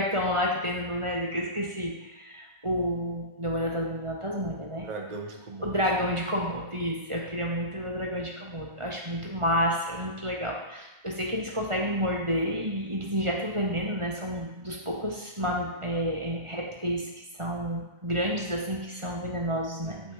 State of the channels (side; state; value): left; late; 1.4 ms